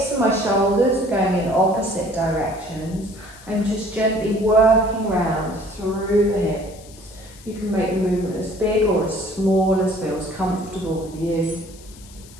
and my shoulders are going in opposite directions. I'm just gently working round through the hips. You can make the movement as big or as small as feels comfortable for you.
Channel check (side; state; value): left; noise; hiss, 22 dB below the sound